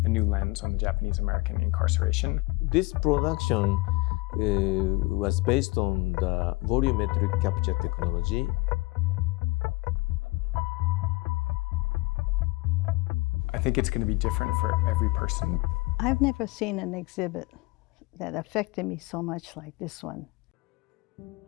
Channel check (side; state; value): right; quieter; 23.9 dB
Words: a new lens on the Japanese American incarceration. This production was based on the volumetric capture technology. I think it's going to be different for every person. I've never seen an exhibit that affected me so much like this one.